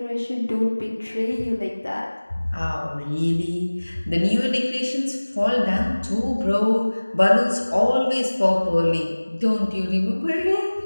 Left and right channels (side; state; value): both; inverted; correlation -1.00